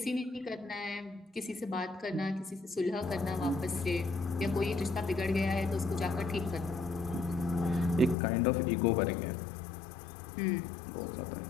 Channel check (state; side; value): drops out; right; at 8.2 s